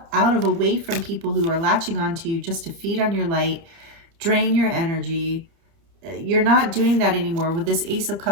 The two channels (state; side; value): late; left; 30 ms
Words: out of away from people who are latching onto you just to feed on your light, drain your energy. You're not doing that anymore. With this Ace of